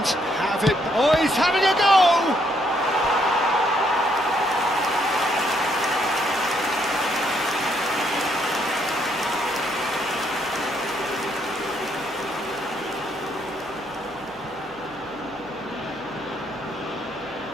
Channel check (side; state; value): left; noise; hum, 27 dB below the sound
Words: have it. Oh, he's having a go!